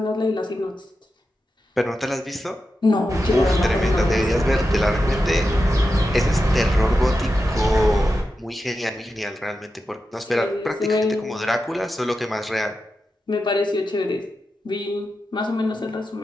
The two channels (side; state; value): both; normal; correlation 0.90